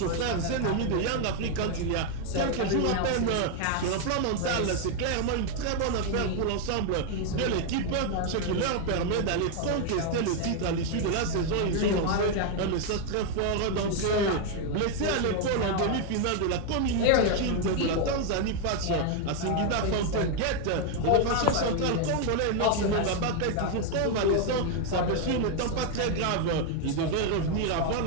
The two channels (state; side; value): different; both; correlation 0.01